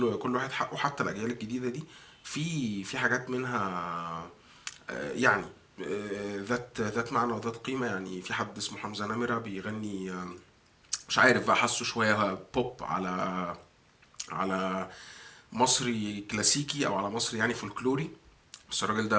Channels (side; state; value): both; identical; correlation 1.00